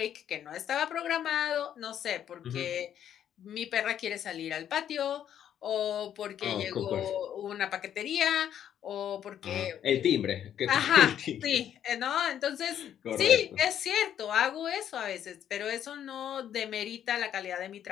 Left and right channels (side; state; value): right; quieter; 9.9 dB